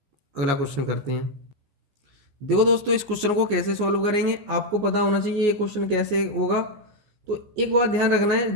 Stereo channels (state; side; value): late; left; 14 ms